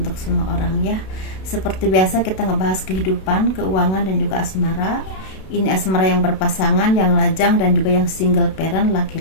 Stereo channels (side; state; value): right; late; 32 ms